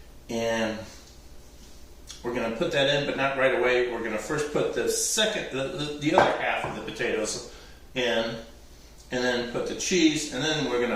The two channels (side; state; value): both; identical; correlation 1.00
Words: and we're going to put that in, but not right away. We're going to first put the other half of the potatoes in, and then put the cheese, and then we're going